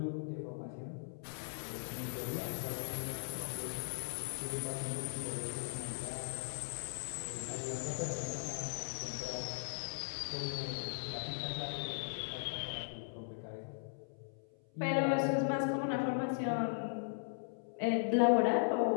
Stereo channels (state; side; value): silent; right; 52 dB below the other